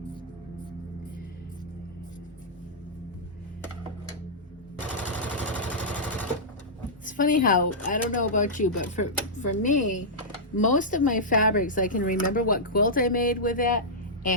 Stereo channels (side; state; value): both; normal; correlation -0.11